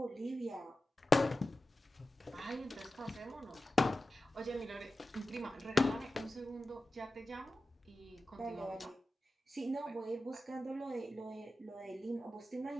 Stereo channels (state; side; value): normal; both; correlation 0.94